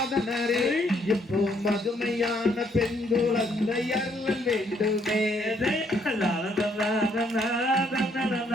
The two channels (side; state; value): both; normal; correlation 0.69